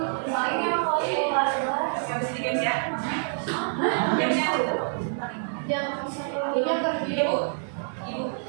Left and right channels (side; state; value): left; silent; digital silence